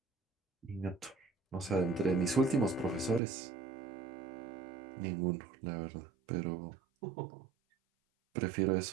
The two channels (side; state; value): left; drops out; at 3.2 s